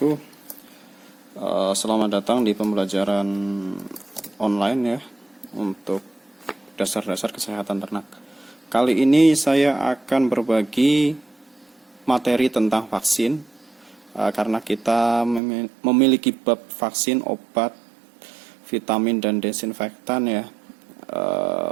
Selamat datang di pembelajaran online ya untuk dasar-dasar kesehatan ternak. Kali ini saya akan berbagi materi tentang vaksin karena kita memiliki bab vaksin, obat, vitamin dan desinfektan ya.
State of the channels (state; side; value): drops out; left; at 15.4 s